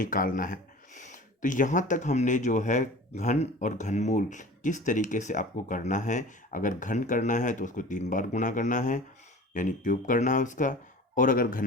है। तो यहाँ तक हमने जो है घन और घनमूल किस तरीके से आपको करना है। अगर घन करना है तो उसको 3 बार गुणा करना है, यानी क्यूब करना है उसका। और अगर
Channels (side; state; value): both; normal; correlation 0.40